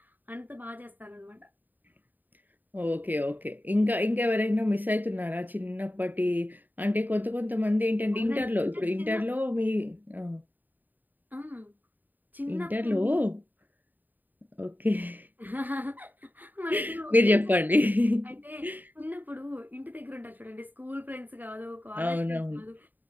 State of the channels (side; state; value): left; late; 0.087 ms